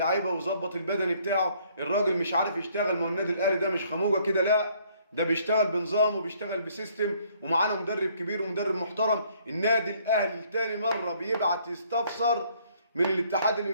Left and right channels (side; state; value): both; inverted; correlation -0.64